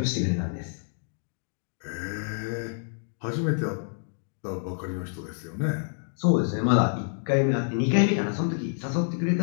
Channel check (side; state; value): right; silent; digital silence